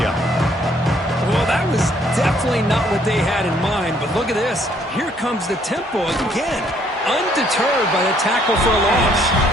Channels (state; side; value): normal; both; correlation 0.65